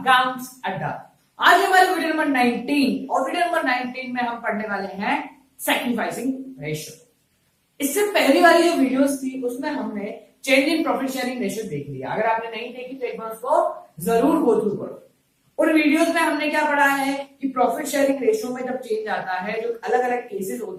Adda. आज हमारे video number 19 और video number 19 में हम पढ़ने वाले हैं सैक्रिफाइसिंग रेशियो। इससे पहली वाली जो वीडियोस थी उसमें हमने change in profit sharing ratio देख लिया। अगर आपने नहीं देखी तो एक बार उसको जरूर गो थ्रू करो। उन वीडियोस में हमने क्या पढ़ा है कि प्रॉफिट शेयरिंग रेशियो में जब चेंज आता है, जो अलग अलग केसेस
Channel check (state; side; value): identical; both; correlation 1.00